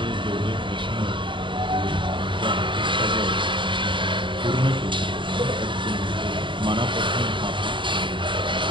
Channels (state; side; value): late; left; 0.24 ms